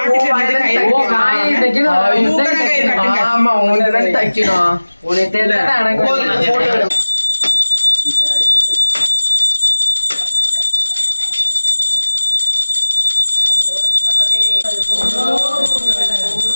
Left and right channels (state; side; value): inverted; both; correlation -1.00